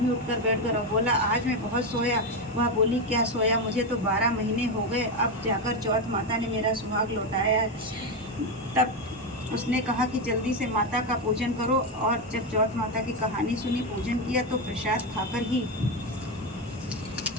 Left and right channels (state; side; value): normal; both; correlation 0.10